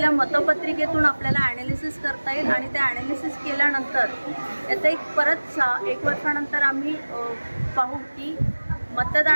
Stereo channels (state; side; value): inverted; both; correlation -1.00